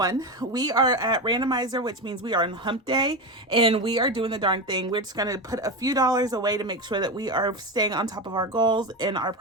We are at Randomizer, which means we are on hump day and we are doing the darn thing. We're just going to put a few dollars away to make sure that we are staying on top of our goals and our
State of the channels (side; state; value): both; normal; correlation 0.18